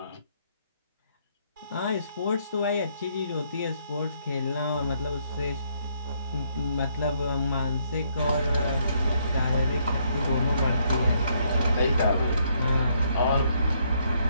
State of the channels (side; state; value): both; inverted; correlation -0.71